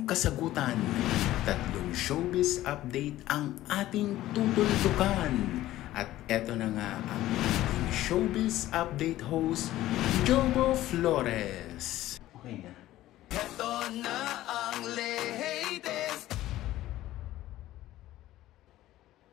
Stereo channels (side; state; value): right; quieter; 14.9 dB